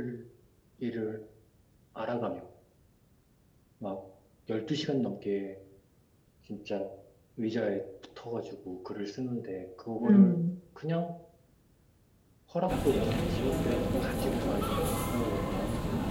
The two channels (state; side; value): identical; both; correlation 1.00